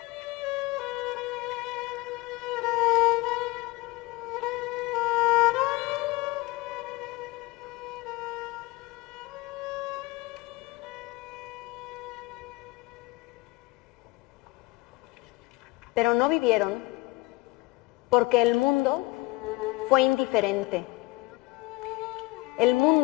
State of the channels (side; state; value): right; quieter; 21.6 dB